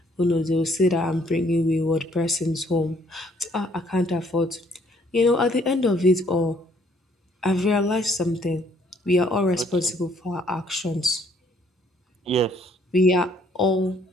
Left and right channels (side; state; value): both; normal; correlation 0.64